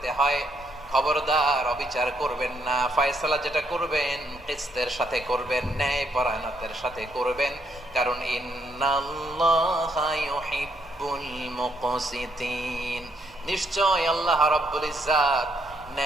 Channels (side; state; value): both; normal; correlation 0.74